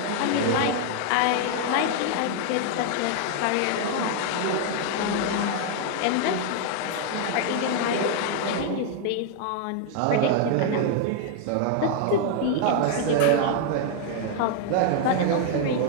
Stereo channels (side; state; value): both; different; correlation 0.00